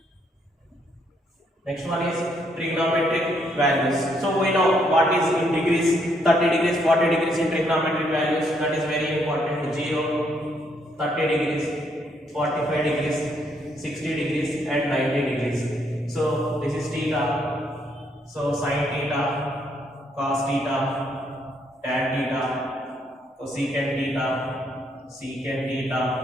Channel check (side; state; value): both; normal; correlation 0.72